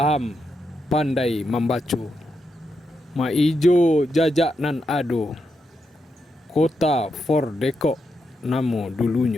pandai membaca. Ma ijo jajak nan ado, kota for dekok namo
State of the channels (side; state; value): both; normal; correlation 0.84